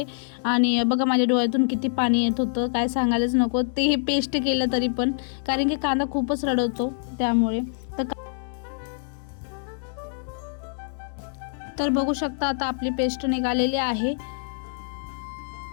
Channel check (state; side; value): silent; right; digital silence